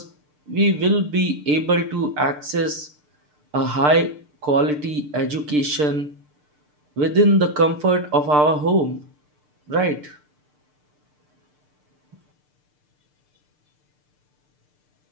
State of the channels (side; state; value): left; late; 6.7 ms